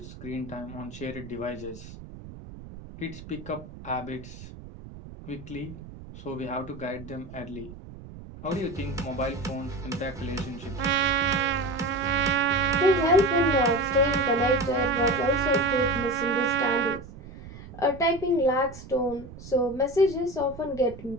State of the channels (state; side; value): noise; right; rumble, 15 dB below the sound